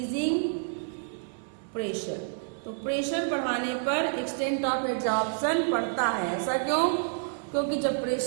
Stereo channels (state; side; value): silent; left; 59 dB below the other